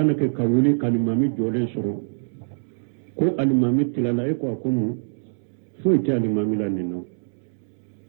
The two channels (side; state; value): left; silent; digital silence